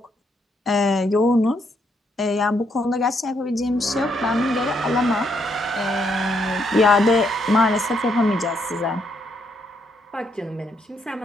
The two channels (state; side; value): normal; both; correlation 0.75